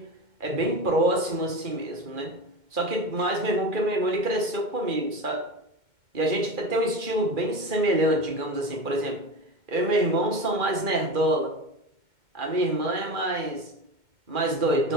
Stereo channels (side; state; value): left; late; 2.4 ms